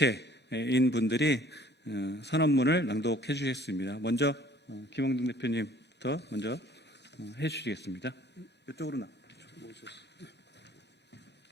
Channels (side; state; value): both; normal; correlation 0.55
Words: 분들이 선언문을 낭독해 주셨습니다. 먼저 김영등 대표님부터 먼저 해 주시겠습니다. 이쪽으로 나.